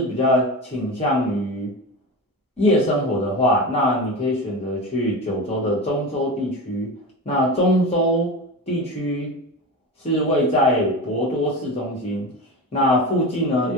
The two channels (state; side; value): normal; both; correlation 0.25